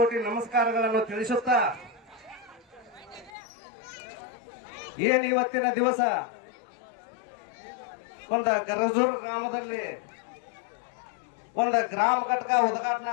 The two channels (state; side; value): drops out; right; at 3.3 s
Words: ನಮಸ್ಕಾರಗಳನ್ನು ತಿಳಿಸುತ್ತಾ, ಏನು ಇವತ್ತಿನ ದಿವಸ ಒಂದು ಗರಜೂರು ಗ್ರಾಮದಲ್ಲಿ ಒಂದು ಗ್ರಾಮ ಘಟಕ